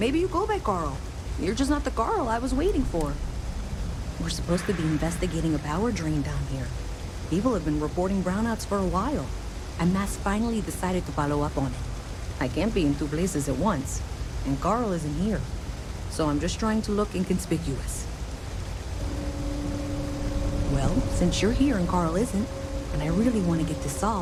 you go by Carl. You're just not the Carl I was waiting for. We're supposed to be investigating a power drain down here. People have been reporting brownouts for a while, and Mass finally decided to follow up on it. I can't be in two places at once, and Carl isn't here. So I'm just trying to look inconspicuous. Well, since you're here and Carl isn't, and I really want to get this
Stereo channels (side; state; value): both; identical; correlation 1.00